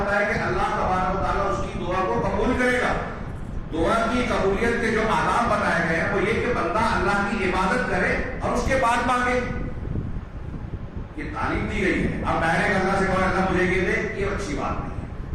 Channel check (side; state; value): both; identical; correlation 1.00